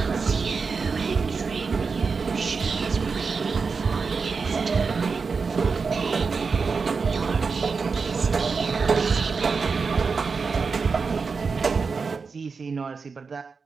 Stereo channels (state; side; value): quieter; left; 5.0 dB